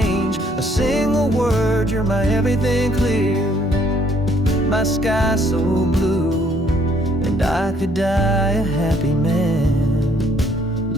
a single word. You're my everything clear, my sky so blue, and I could die a happy man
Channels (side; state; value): both; normal; correlation 0.65